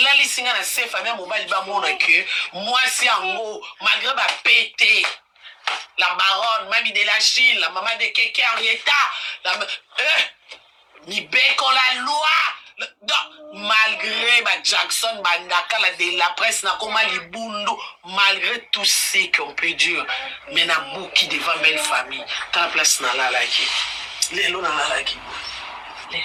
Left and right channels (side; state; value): both; identical; correlation 1.00